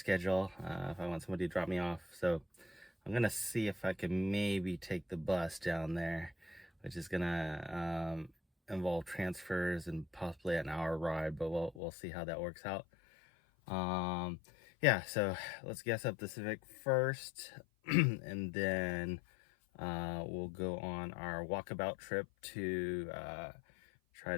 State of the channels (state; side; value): drops out; right; at 11.8 s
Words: if I want somebody to drop me off. So I'm gonna see if I can maybe take the bus down there, which is gonna involve transfers and possibly an hour ride, but we'll see how that works out. Yeah, so let's gas up the Civic first. And then we'll go on our walkabout trip to try